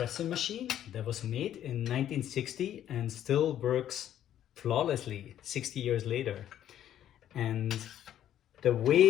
machine that was made in 1960 and still works flawlessly 60 years later. And the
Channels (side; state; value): right; quieter; 11.2 dB